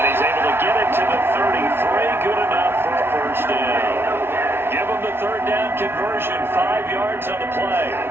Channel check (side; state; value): left; late; 0.11 ms